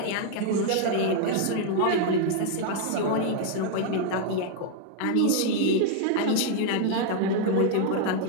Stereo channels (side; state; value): both; different; correlation 0.00